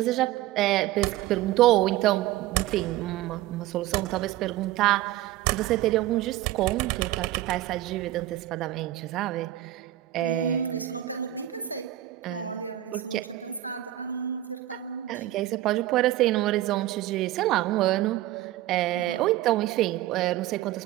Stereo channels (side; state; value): left; quieter; 14.4 dB